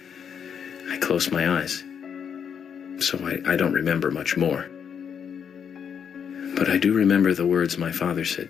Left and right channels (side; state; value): right; quieter; 7.5 dB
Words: I closed my eyes, so I don't remember much more. But I do remember the words my father said